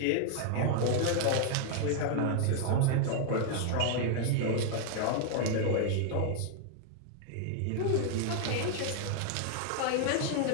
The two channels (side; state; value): both; different; correlation 0.00